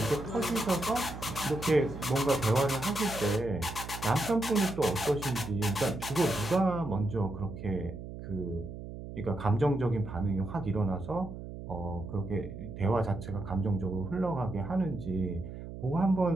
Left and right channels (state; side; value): noise; right; hum, 10 dB below the sound